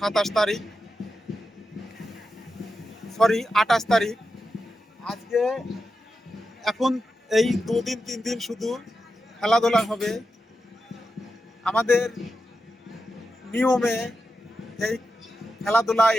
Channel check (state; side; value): normal; both; correlation 0.89